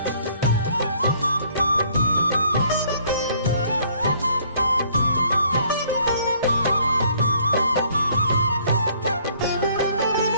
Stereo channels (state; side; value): inverted; both; correlation -0.62